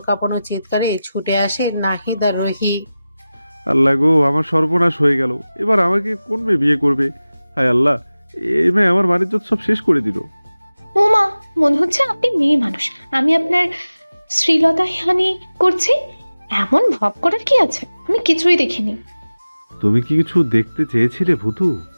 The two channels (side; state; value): both; inverted; correlation -0.96